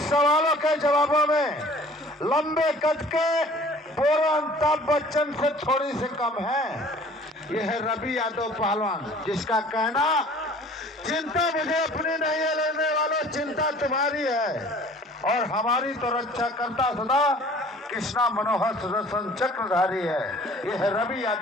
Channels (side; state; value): both; normal; correlation 0.50